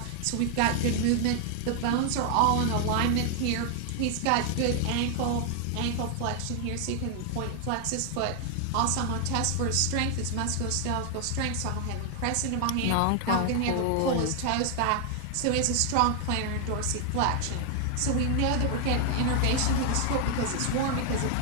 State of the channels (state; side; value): different; both; correlation 0.00